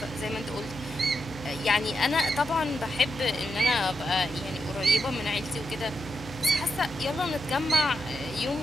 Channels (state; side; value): noise; left; hum, 16 dB below the sound